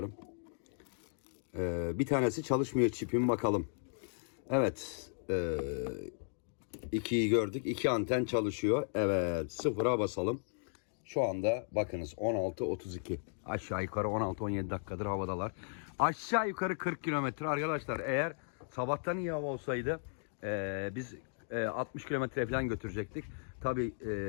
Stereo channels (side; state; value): right; silent; digital silence